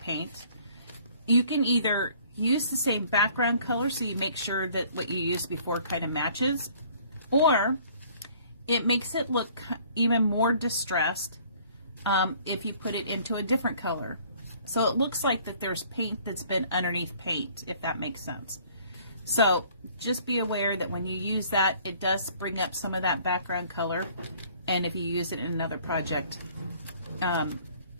you can either use the same background color so you make sure that what you used before kind of matches, or it makes it look even more distressed if you put it into a different color. So it looks like that there's paint that's been underneath paint, if that makes sense. So just be aware that when you use that, it does bring up some of that background color, and if you use it in another project,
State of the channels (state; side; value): inverted; both; correlation -0.56